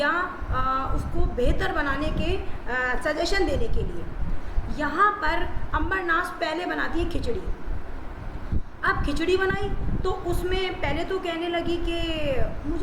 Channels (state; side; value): identical; both; correlation 1.00